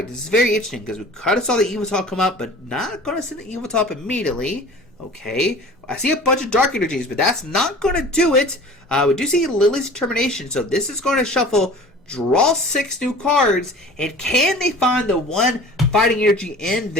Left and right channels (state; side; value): normal; both; correlation 0.43